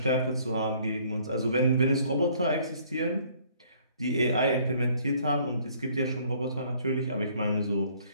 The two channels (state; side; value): inverted; both; correlation -0.60